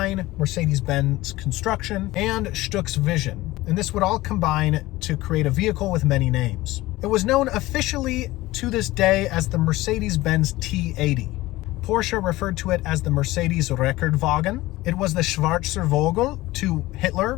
Mercedes-Benz construction, and Stuck's vision. And this would all combine to create a vehicle with many names. It was known officially to this day as the Mercedes-Benz T-80. Porsche referred to it as the Mercedes Rekordwagen. It was the Schwarzer Vogel to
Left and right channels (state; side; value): quieter; right; 18.4 dB